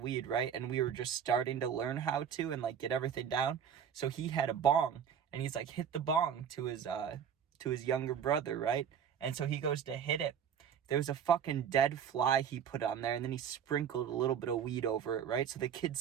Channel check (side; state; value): left; quieter; 8.1 dB